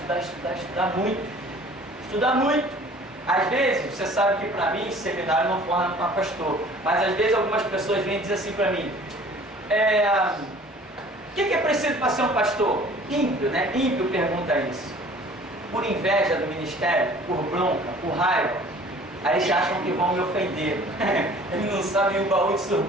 muito. Estudar muito. Às vezes, você sabe que para mim, seminário não forma para pastor, mas às vezes algumas pessoas vêm dizer assim para mim: o que é preciso para ser um pastor? Ímpio, né? Ímpio pergunta isso. Por inveja do ministério, por bronca, por raiva. Aí eles acham que vão me ofender. Eles não sabem o baú de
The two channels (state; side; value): normal; both; correlation 0.50